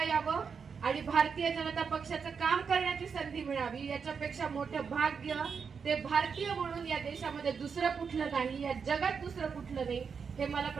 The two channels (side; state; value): left; quieter; 6.0 dB